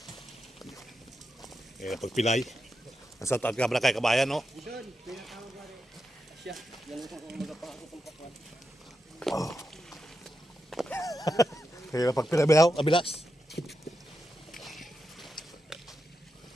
Eh, pagpilay. Nasa taat ka ba kay kabayan, no? Oh. Kaya pagpilay ba abilas?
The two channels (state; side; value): normal; both; correlation 0.87